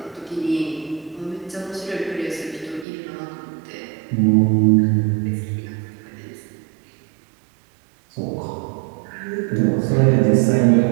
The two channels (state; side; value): drops out; left; at 2.9 s